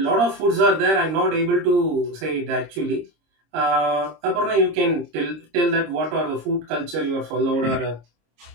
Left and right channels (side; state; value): left; late; 26 ms